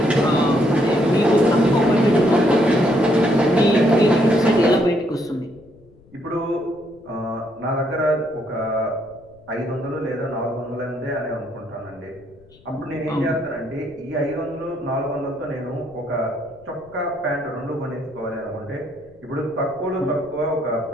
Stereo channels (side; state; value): left; noise; rumble, 27 dB below the sound